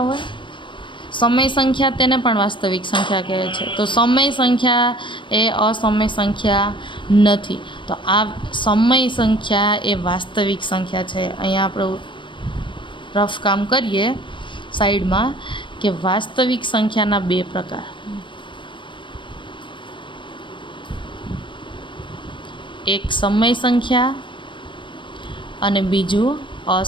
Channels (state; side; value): late; right; 0.24 ms